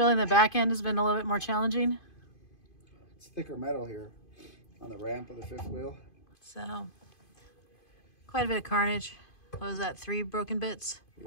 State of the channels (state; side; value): late; right; 2.5 ms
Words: the back end has been a little bit more challenging? It's thicker metal here on the ramp of the fifth wheel. So quite a bit of carnage. What was that, 3 broken bits?